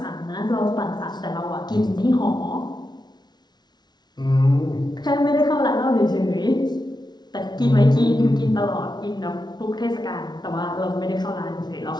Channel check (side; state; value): right; late; 0.20 ms